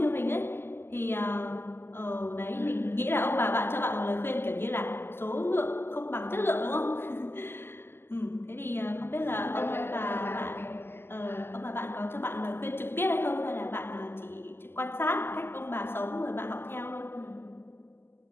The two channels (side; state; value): right; late; 0.11 ms